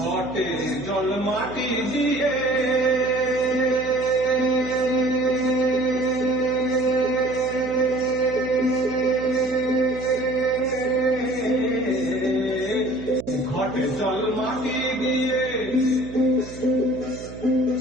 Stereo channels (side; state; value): right; noise; hum, 14 dB below the sound